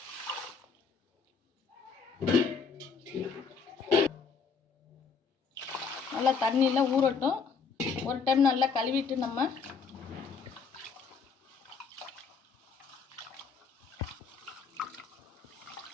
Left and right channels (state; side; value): quieter; right; 5.6 dB